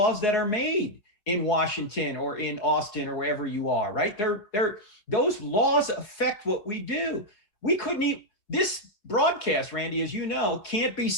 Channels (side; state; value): right; late; 4.9 ms